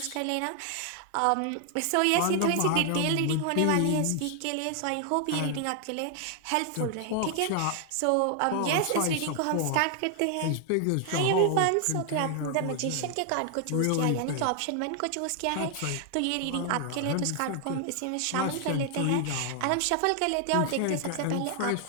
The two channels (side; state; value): both; different; correlation 0.00